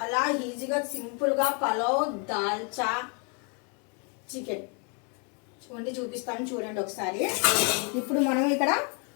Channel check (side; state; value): right; quieter; 36.7 dB